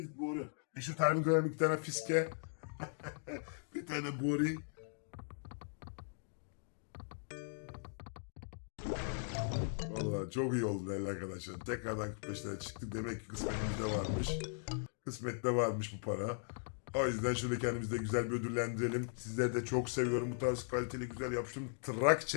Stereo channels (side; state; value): right; silent; digital silence